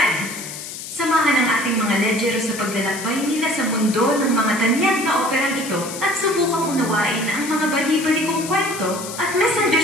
Samahan ang ating mga ledyero sa paglalakbay nila sa mundo ng mga tanyag na operang ito at subukang unawain ang mga bali-balikong kwento at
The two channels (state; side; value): noise; left; hiss, 10 dB below the sound